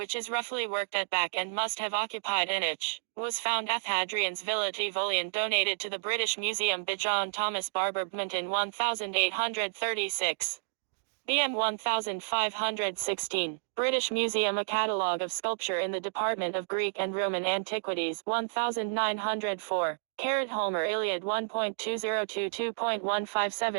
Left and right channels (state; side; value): silent; left; digital silence